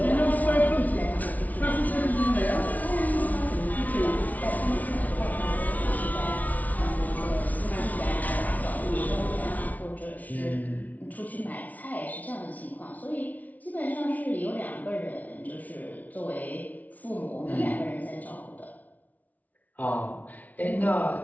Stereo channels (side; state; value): right; late; 0.074 ms